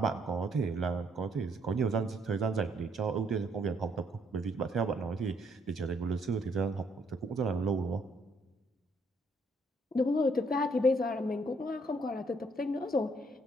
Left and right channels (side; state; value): both; normal; correlation 0.68